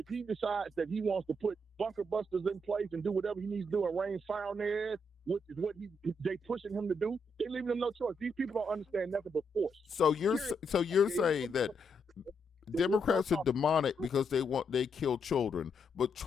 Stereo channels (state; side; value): normal; both; correlation 0.78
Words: he decides that he wants to put bunker busters in place and do whatever he needs to do and rain fire on their ass, which is what they pushing him to do. They leaving him no choice. These people don't understand nothing but force. So you're saying that Democrats are demonic because they kill children, but